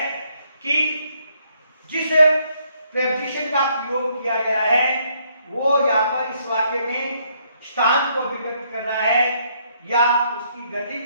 कि जिस प्रेपोजिशन का प्रयोग किया गया है वो यहाँ पर इस वाक्य में स्थान को व्यक्त कर रहा है या उसकी गति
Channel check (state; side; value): inverted; both; correlation -0.71